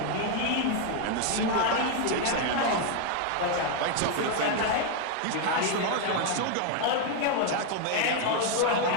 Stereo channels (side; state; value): both; different; correlation 0.01